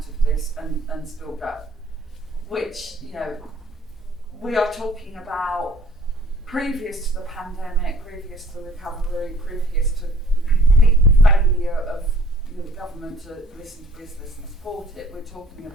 of this and still go. Which we are talking about previous to the pandemic, previous to the recovery, previous to the complete failure of the government to listen to business and support it. We're talking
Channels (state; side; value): normal; both; correlation 0.53